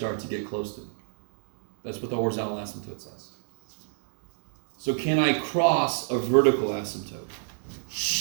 to get close to it. That's what the horizontal asymptote says. So can I cross a vertical asymptote?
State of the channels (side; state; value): left; silent; digital silence